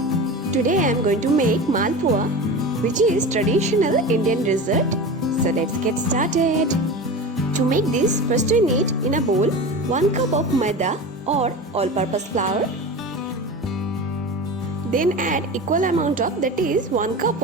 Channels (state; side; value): normal; both; correlation 0.29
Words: Today I am going to make Malpua, which is traditional Indian dessert. So let's get started. To make this, first we need in a bowl 1 cup of maida or all-purpose flour. Then add equal amount of, that is 1 cup